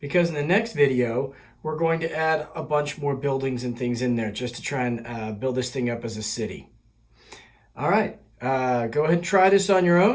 because in the next video we're going to add a bunch more buildings and things in there just to try and build this thing up as a city. All right, go ahead and try this on your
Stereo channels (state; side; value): identical; both; correlation 1.00